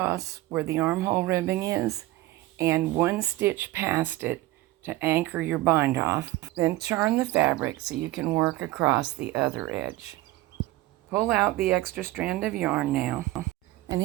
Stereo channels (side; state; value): left; quieter; 17.5 dB